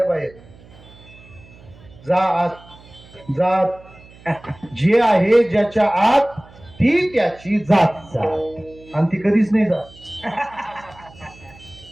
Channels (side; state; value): right; noise; hum, 23 dB below the sound